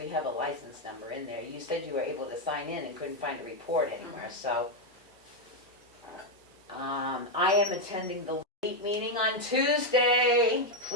have a license number in there. You said you were able to sign in and couldn't find a report anywhere, so. I am attending the LEAP meeting on Tuesday.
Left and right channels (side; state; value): both; normal; correlation 0.03